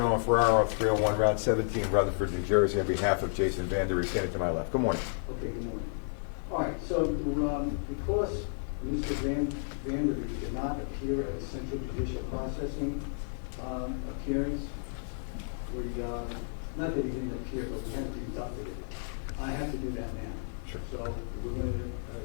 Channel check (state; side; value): silent; right; digital silence